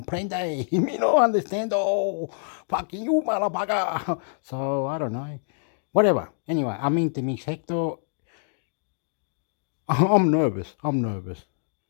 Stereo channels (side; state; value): right; silent; digital silence